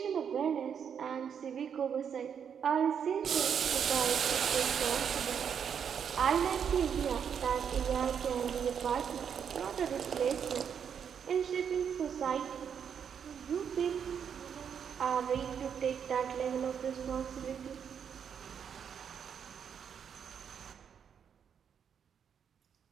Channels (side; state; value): left; quieter; 7.7 dB